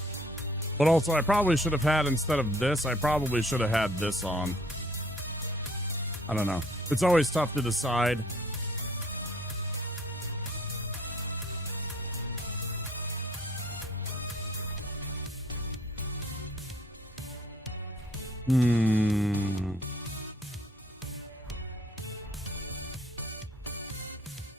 But also, I probably should have had, instead of this, I probably should have had this on. I don't know. It's always tough to decide.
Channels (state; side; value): normal; both; correlation 0.60